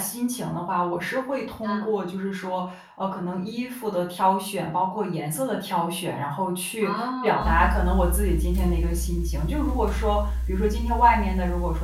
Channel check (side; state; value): both; identical; correlation 1.00